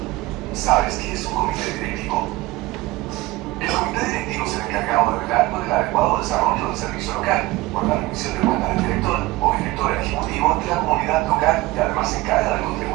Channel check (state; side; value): quieter; left; 19.2 dB